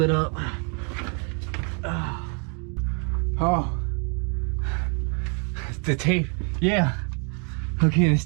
up. Oh, the tape. Yeah. Okay, this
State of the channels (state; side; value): quieter; left; 38.5 dB